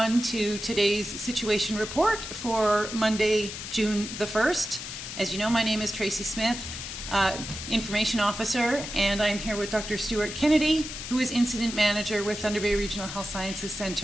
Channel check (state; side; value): noise; left; hiss, 8 dB below the sound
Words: to today's situation report for Monday, June the 1st. As you know, my name is Tracy Smith, Information Officer, and I'm here with Dr. Stuart Kennedy, who is Incident Manager with Thunder Bay Regional Health Sciences